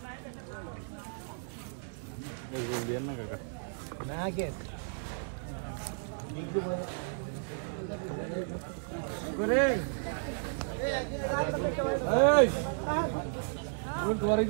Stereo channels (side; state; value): left; silent; digital silence